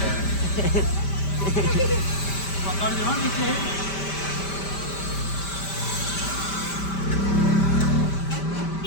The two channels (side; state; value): right; late; 5.1 ms